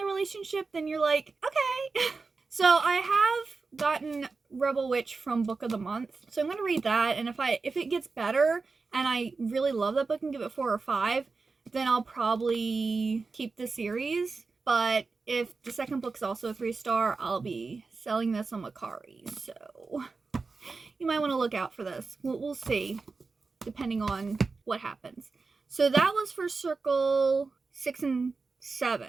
relationship, then you're like, okay. So I have gotten Rebel Witch from Book of the Month, so I'm going to read that, and if it gets better, and I really love that book and give it 4 or 5, then I'll probably keep the series. But if the second book's also a 3-star, I'll be selling this on Macari, so you might want to look out for this. We'll see, depending on what happens. So that was for Circle 6 and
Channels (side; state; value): left; quieter; 4.2 dB